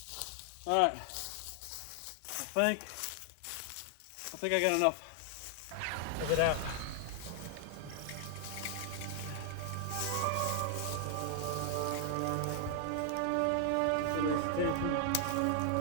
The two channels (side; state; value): both; different; correlation 0.00